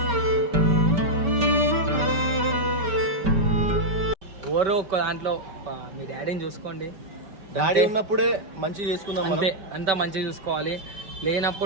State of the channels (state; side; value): late; left; 5.2 ms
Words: ఎవరో ఒక దాంట్లో మీ డాడీని చూసుకోండి. డాడీ ఉన్నప్పుడే మంచిగా చేసుకుందాం, అంతే. అంతా మంచిగా చూసుకోవాలి.